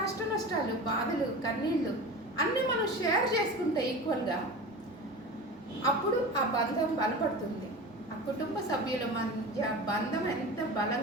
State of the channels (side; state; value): both; normal; correlation 0.31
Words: కష్ట నష్టాలు, బాధలు, కన్నీళ్ళు అన్నీ మనం షేర్ చేసుకుంటే ఈక్వల్గా, అప్పుడు ఆ బంధం బలపడుతుంది. ఆ కుటుంబ సభ్యుల మధ్య బంధం ఎంత